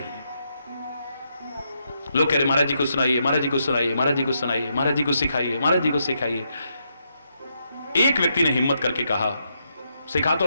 लोग कह रहे महाराज जी को सुनाइए, महाराज जी को सुनाइए, महाराज जी को सुनाइए, महाराज जी को सिखाइए, महाराज जी को सिखाइए। एक व्यक्ति ने हिम्मत करके कहा, सिखा तो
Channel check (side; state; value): both; inverted; correlation -0.80